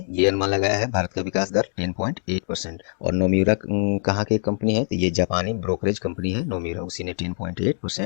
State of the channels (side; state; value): right; silent; digital silence